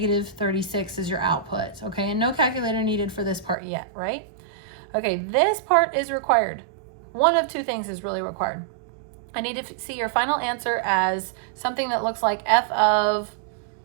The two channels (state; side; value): drops out; left; at 3.6 s